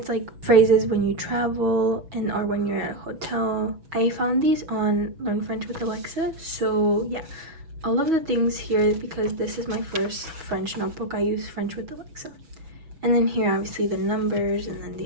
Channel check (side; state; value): left; late; 6.2 ms